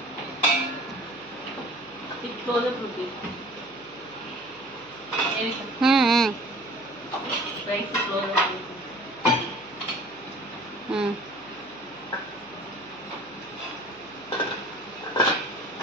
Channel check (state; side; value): noise; right; hum, 26 dB below the sound